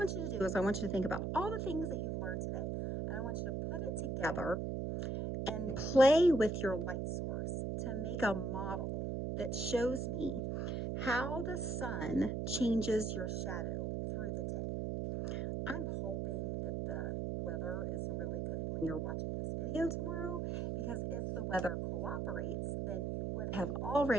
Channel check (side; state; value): right; noise; hum, 1 dB below the sound